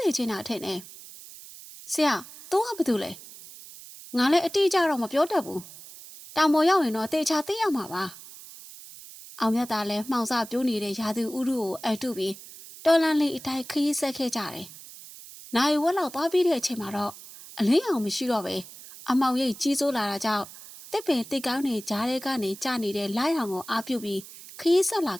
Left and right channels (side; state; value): right; noise; hiss, 16 dB below the sound